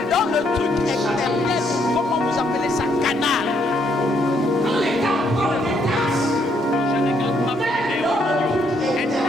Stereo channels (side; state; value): both; normal; correlation 0.72